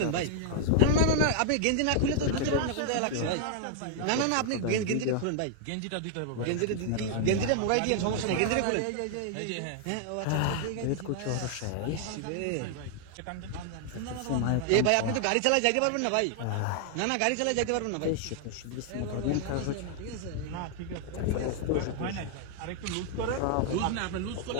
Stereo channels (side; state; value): both; different; correlation 0.00